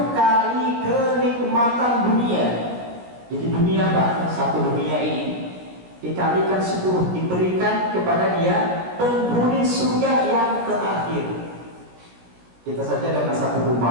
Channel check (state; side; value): late; left; 17 ms